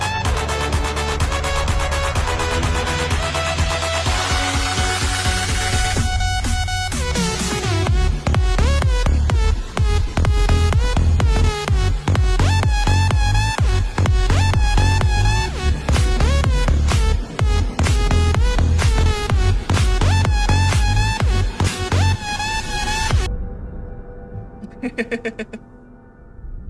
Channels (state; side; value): identical; both; correlation 1.00